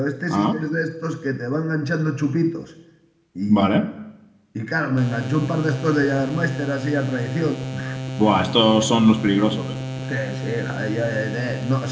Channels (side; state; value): both; identical; correlation 1.00